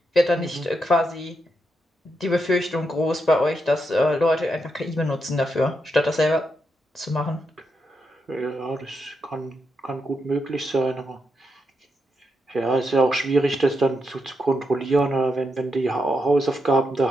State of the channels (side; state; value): both; normal; correlation 0.83